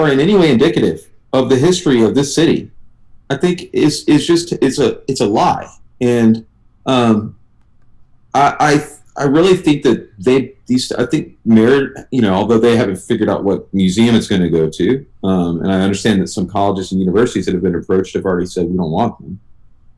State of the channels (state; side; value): identical; both; correlation 1.00